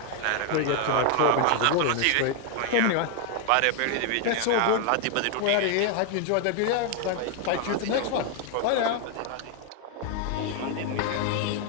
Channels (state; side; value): different; both; correlation 0.00